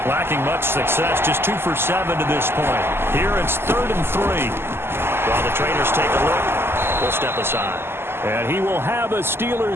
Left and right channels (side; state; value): left; late; 0.12 ms